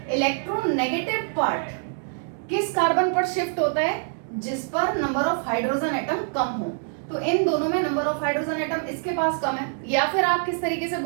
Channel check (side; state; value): left; silent; digital silence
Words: इलेक्ट्रोनेगेटिव पार्ट किस कार्बन पर शिफ्ट होता है, जिस पर नंबर ऑफ हाइड्रोजन एटम कम हो. तो इन दोनों में नंबर ऑफ हाइड्रोजन एटम इसके पास कम है, या फिर आप किस तरीके से